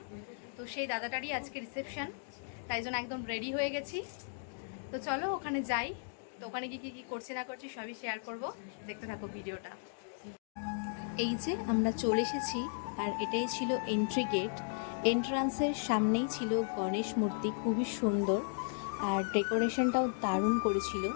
তো সেই দাদাটারই আজকে রিসেপশন, তাই জন্য একদম রেডি হয়ে গেছি। তো চলো ওখানে যাই। তো ওখানে গিয়ে কী কী করছি না করছি সবই শেয়ার করব, দেখতে থাকো ভিডিওটা। এই যে আমরা চলে এসেছি, আর এটাই ছিল এন্ট্রি গেট। এন্ট্রান্সের সামনেই ছিল গণেশ মূর্তি, খুবই সুন্দর, আর ডেকোরেশনটাও দারুণ করেছিল।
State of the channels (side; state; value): right; silent; digital silence